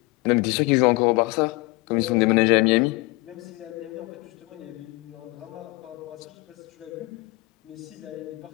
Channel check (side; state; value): right; quieter; 24.0 dB